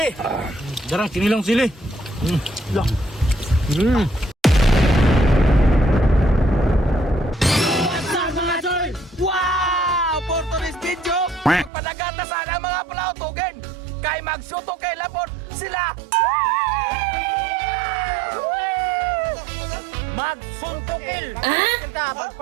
Darang kinilang sili. Wow! For today's video, padagata sana mga palautugan. Kay magsuto kay lapon sila. Magsuntukil.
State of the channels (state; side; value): drops out; left; at 11.7 s